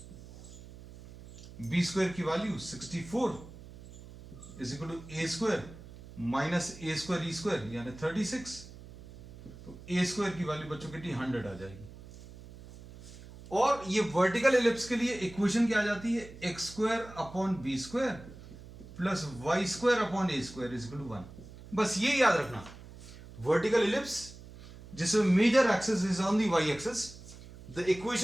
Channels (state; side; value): noise; right; hum, 17 dB below the sound